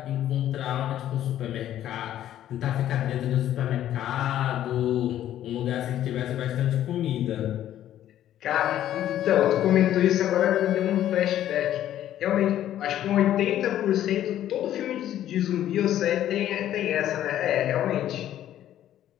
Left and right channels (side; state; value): right; quieter; 12.0 dB